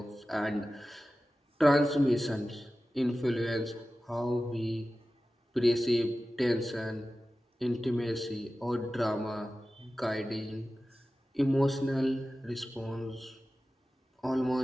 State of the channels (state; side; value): normal; both; correlation 0.95